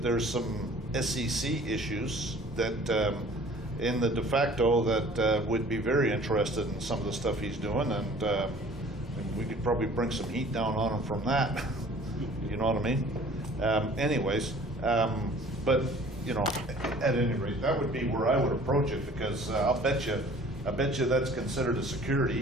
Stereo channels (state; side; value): normal; both; correlation 0.50